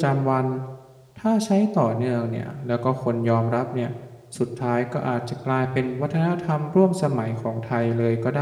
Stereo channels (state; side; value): identical; both; correlation 1.00